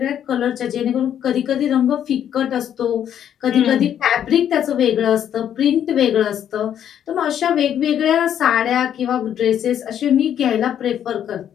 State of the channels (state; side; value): quieter; right; 9.8 dB